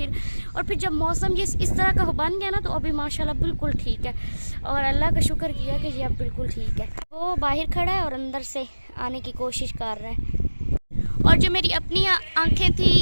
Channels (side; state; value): both; inverted; correlation -1.00